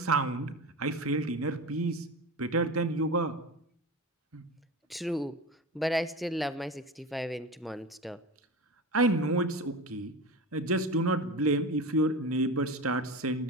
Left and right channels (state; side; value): normal; both; correlation 0.27